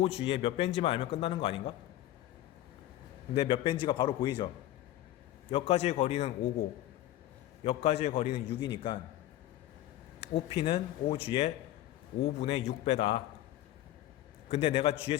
몇 벤지만 알면 끝나는 거 아닌가? 근데 몇 벤지가 바로 보이죠. 여기까지의 거리는 5고 여기까지의 거리는 6이니까 OP는 OG의 5분의 6배다. 근데 내가 G의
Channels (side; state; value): right; quieter; 14.0 dB